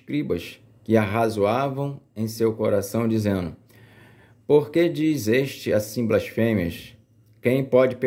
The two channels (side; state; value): both; identical; correlation 1.00